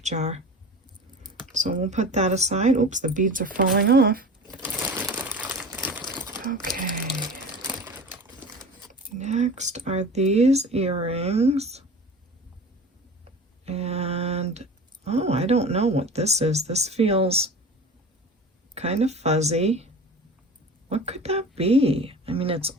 jar. So we'll put that aside. Oops, the beads are falling off. Okay. Next are these earrings. And, oh, I don't know what this is. This feels kind of fuzzy. What could that be? I mean, it's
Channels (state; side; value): normal; both; correlation 0.36